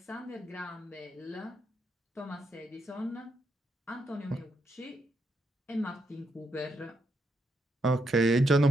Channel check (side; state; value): both; normal; correlation 0.79